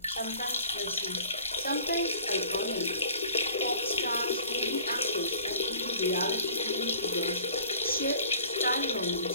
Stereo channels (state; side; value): inverted; both; correlation -0.48